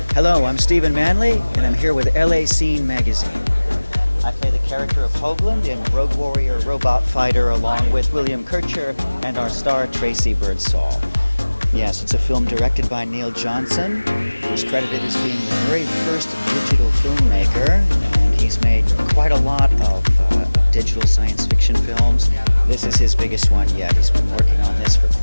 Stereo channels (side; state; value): both; inverted; correlation -1.00